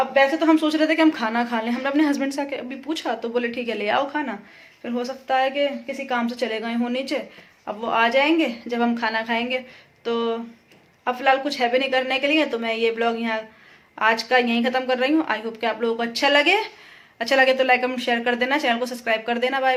वैसे तो हम सोच रहे थे कि हम खाना खा लें, हमने अपने हस्बैंड से अभी पूछा तो बोले ठीक है ले आओ खाना, फिर हो सकता है कि किसी काम से चले गए हों नीचे, अब वो आ जाएंगे जब हम खाना खाएंगे। तो अब फिलहाल कुछ है भी नहीं करने के लिए, तो मैं ये ब्लॉग यहाँ आज का यहीं ख़त्म कर रही हूँ। आई होप कि आप लोगों को अच्छा लगे तो लाइक कमेंट शेयर कर देना, चैनल को सब्सक्राइब कर देना।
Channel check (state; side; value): identical; both; correlation 1.00